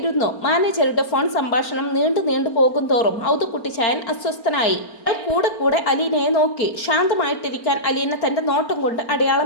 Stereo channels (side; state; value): right; late; 4.4 ms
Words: മാനേജറുടെ ഫോൺ സംഭാഷണം നീണ്ടു പോകും തോറും ഔതക്കുട്ടി ചായൻ അസ്വസ്ഥനായി. അയാൾ കൂടെ അലീനയെ നോക്കി. ശാന്തമായിട്ടിരിക്കാൻ അലീന തന്റെ നോട്ടം കൊണ്ട്